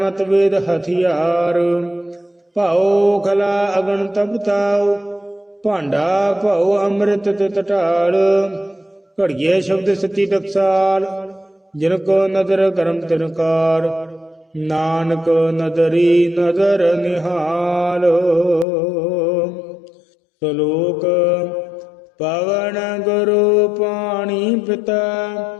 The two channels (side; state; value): right; drops out; at 18.7 s